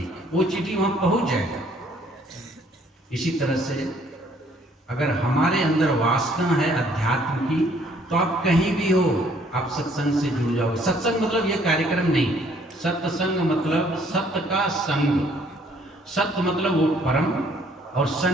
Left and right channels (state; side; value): normal; both; correlation 0.62